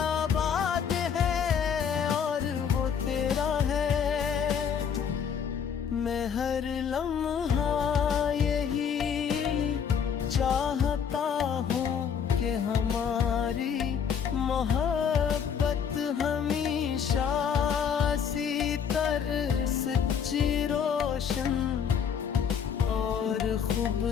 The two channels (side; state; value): right; quieter; 7.4 dB